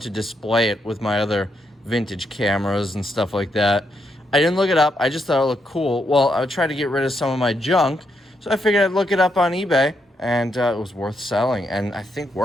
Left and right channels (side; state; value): both; normal; correlation 0.80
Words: to display it with my other vintage cameras and stuff like that. I didn't look it up. I just thought it looked cool. Well, I would try to get rid of some of my junk. So I figured I'd look it up on eBay. And it was worth selling, and I think